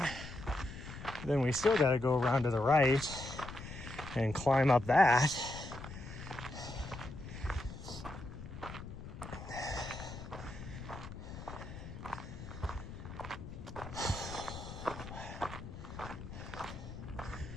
Then we still got to go around to the right and climb up that.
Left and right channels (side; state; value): left; noise; rumble, 11 dB below the sound